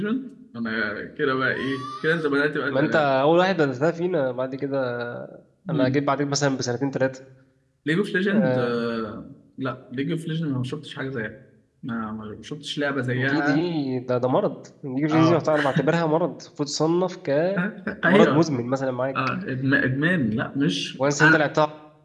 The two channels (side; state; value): both; identical; correlation 1.00